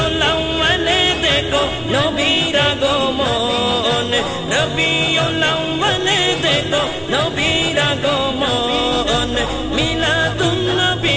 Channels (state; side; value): identical; both; correlation 1.00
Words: আউয়াল দেখো নবীর আগমন রবিউল আউয়াল দেখো নবীর আগমন মিলাদুন